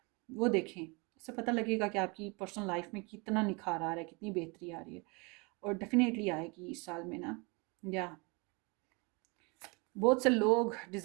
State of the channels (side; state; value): left; quieter; 29.3 dB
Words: वो देखें, इससे पता लगेगा कि आपकी पर्सनल लाइफ में कितना निखार आ रहा है, कितनी बेहतरी आ रही है। और डेफिनेटली आएगी इस साल में ना। या बहुत से लोग